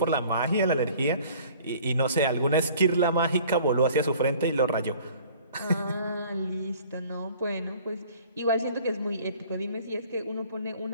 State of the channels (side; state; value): both; inverted; correlation -0.51